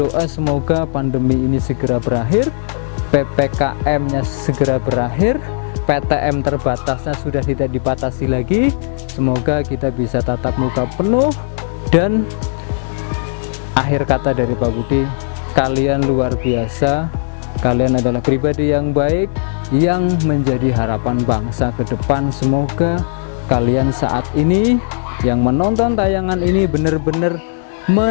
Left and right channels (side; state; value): right; silent; digital silence